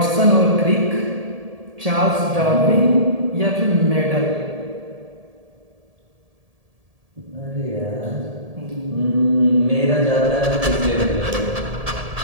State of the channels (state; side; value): late; left; 1.7 ms